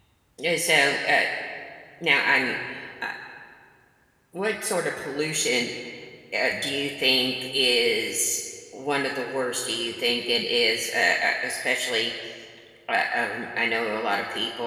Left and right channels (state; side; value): identical; both; correlation 1.00